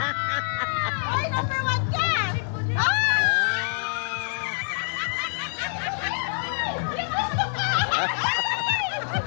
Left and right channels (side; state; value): right; silent; digital silence